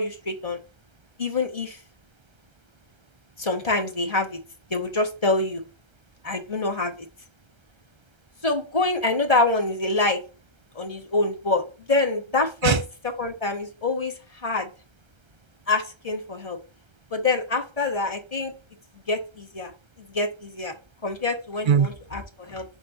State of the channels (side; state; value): left; late; 1.3 ms